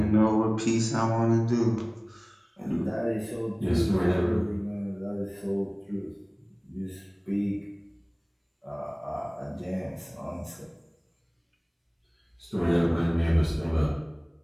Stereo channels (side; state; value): both; identical; correlation 1.00